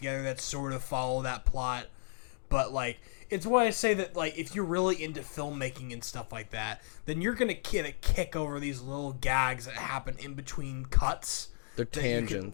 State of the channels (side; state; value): right; silent; digital silence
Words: that sort of follow that plot. But like it's why I say that like if you're really into filmmaking and stuff like that, then you're gonna get a kick over these little gags that happen in between cuts. They're that you can-